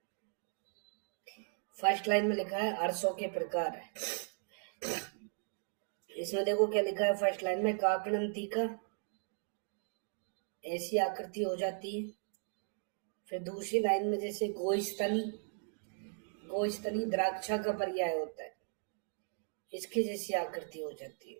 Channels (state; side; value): silent; left; 53 dB below the other